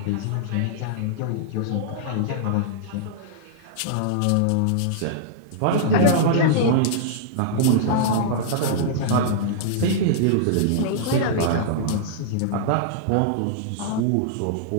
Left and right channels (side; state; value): both; different; correlation -0.01